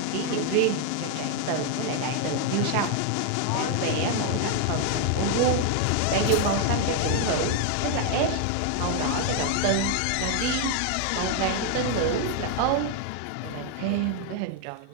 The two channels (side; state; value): both; different; correlation 0.00